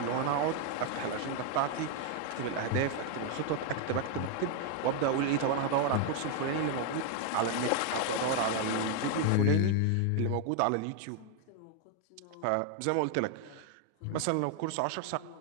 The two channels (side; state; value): both; different; correlation 0.00